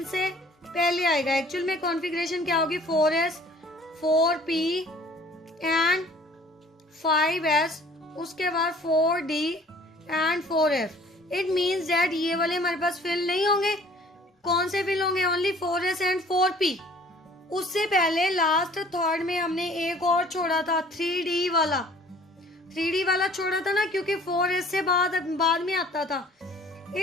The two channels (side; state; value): both; normal; correlation 0.52